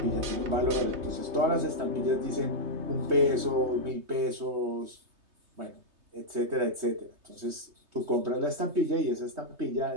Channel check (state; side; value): late; left; 3.3 ms